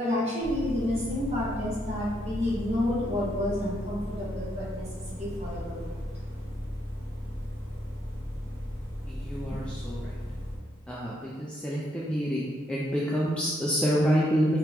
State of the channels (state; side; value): normal; both; correlation 0.76